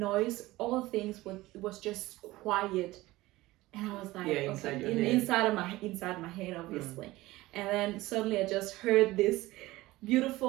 all things was just quiet, and I was like, inside my head obviously. And then suddenly I just heard this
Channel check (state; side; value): quieter; left; 18.5 dB